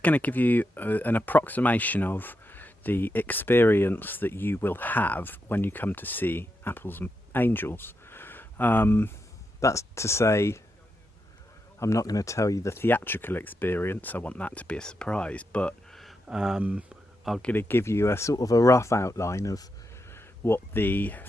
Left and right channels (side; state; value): both; normal; correlation 0.85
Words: going to give you an approximation of the experience that you will have when you come to see Apples and Angels. That's to say, I'm not going to tell you the theatrical experience. I want that to be a surprise, but I'm going to give you a sort of a rough outline of what the